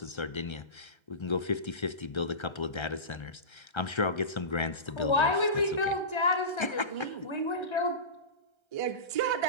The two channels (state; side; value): late; right; 1.3 ms